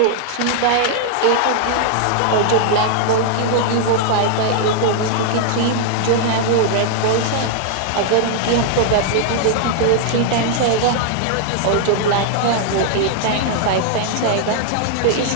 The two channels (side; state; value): both; different; correlation 0.00